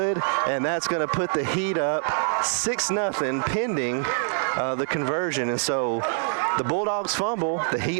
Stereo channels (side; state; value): left; silent; digital silence